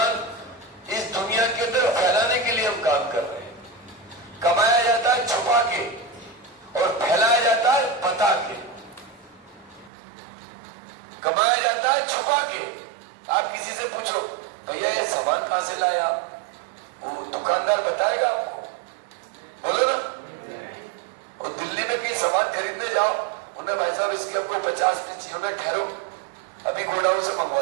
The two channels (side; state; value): left; drops out; at 9.9 s